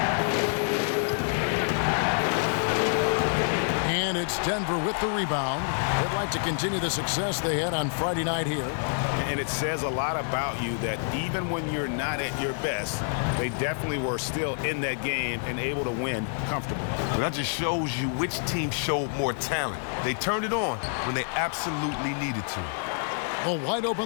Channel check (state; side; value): silent; right; digital silence